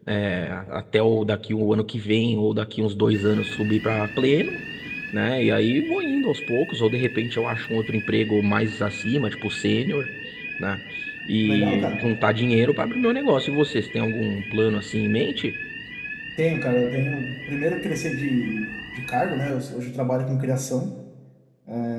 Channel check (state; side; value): identical; both; correlation 1.00